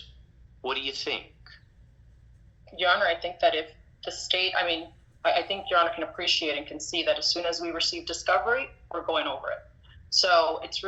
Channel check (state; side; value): identical; both; correlation 1.00